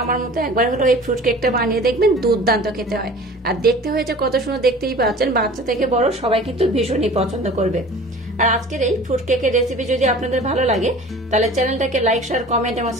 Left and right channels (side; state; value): both; normal; correlation 0.43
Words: আমার মতো একবার হলো এই ফ্রুট কেকটা বানিয়ে দেখবেন, দুর্দান্ত খেতে হয়। আর দেখতে হয়েছে কত সুন্দর, দেখতেই পাচ্ছেন। বাচ্চা থেকে বড় সবাই কিন্তু ভীষণই পছন্দ করবে। আর আজকের এই ফ্রুট কেকের রেসিপি যদি আপনাদের ভালো লাগে তাহলে চ্যানেলটাকে লাইক, শেয়ার, কমেন্ট এবং